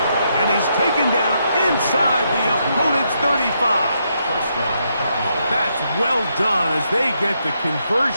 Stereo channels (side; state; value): both; inverted; correlation -0.79